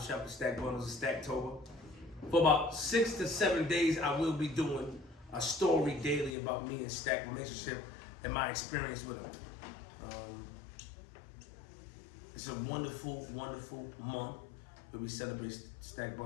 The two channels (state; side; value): drops out; right; at 6.4 s